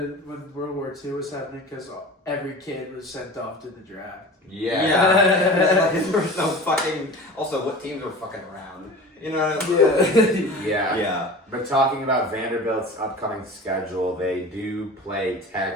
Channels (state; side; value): normal; both; correlation 0.37